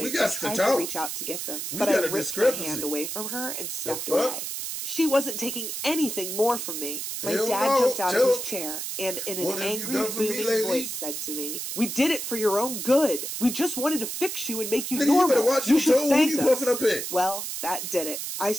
and tried to reach out to get them. But I ripped my hand away from her and stepped away. She wasn't taking anything more from me. My dad jumped out of his chair and in an angry, booming voice said to me, "We did it for your own good. We just wanted to fix you and make you normal. You should thank us." Well, that did it. I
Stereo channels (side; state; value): right; noise; hiss, 5 dB below the sound